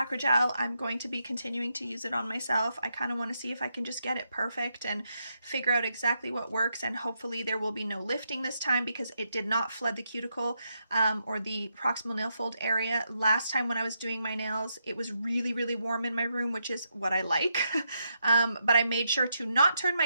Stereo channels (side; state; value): both; inverted; correlation -0.82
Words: I'm going to be continuing to use it on myself. I kind of want to see if I can just get it perfect and figure out exactly what works, and hopefully there will be no lifting this time, because it did not flood the cuticle or the proximal nail fold area. Last time when I was doing my nails, it was really, really warm in my room, which is what I like. But I made sure to not turn my